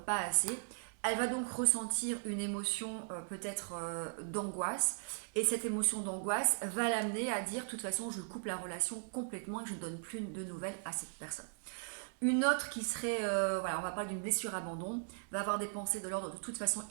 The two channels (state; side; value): silent; left; digital silence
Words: pas assez. Elle va donc ressentir une émotion peut-être d'angoisse, et cette émotion d'angoisse va l'amener à dire de toute façon je coupe la relation complètement et je ne donne plus de nouvelles à cette personne. Une autre qui serait, on va parler d'une blessure abandon, va avoir des pensées de l'ordre de toute façon